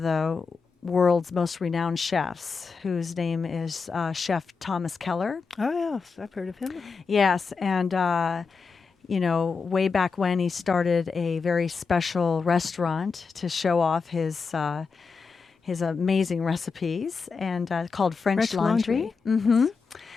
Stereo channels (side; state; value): right; quieter; 5.0 dB